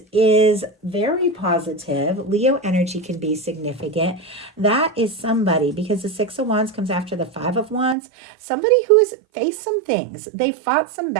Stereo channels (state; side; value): drops out; left; at 8.0 s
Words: is very positive. Leo energy can be significant. That is somebody, because the Six of Wands comes after the Five of Wands, somebody who has faced some things. They fought some